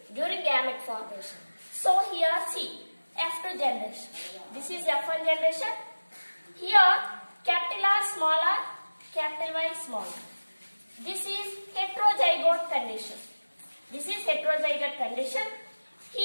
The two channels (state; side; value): inverted; both; correlation -1.00